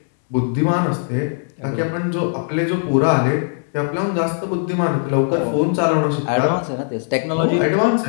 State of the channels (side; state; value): right; silent; 66 dB below the other